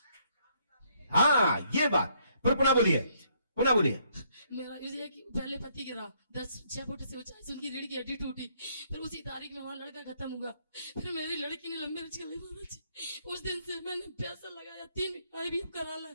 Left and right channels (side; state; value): both; inverted; correlation -0.70